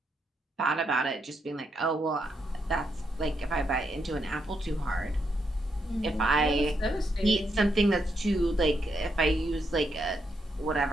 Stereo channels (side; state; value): both; normal; correlation 0.80